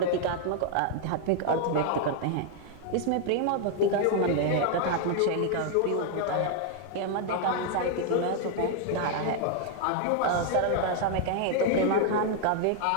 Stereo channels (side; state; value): both; different; correlation 0.00